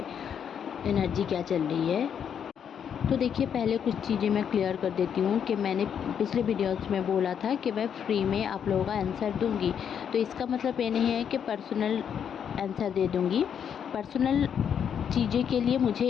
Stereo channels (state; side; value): quieter; right; 8.1 dB